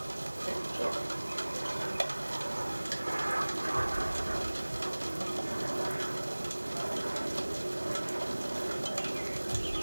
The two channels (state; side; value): inverted; both; correlation -1.00